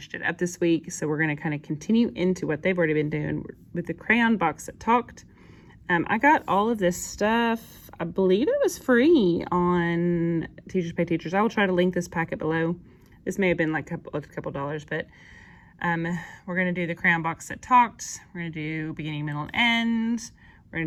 it up this week. So we're going to kind of continue into what they've already been doing with the crayon box that talked. I got all of this stuff. I believe it was free on Teachers Pay Teachers. I will try to link this packet below. This may have been like a couple dollars, but we're going to do the crayon box that talked. We're going to do beginning, middle, and end. We're going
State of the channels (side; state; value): both; identical; correlation 1.00